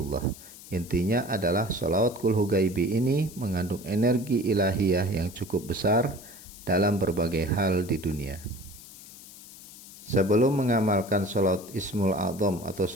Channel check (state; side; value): noise; left; hiss, 17 dB below the sound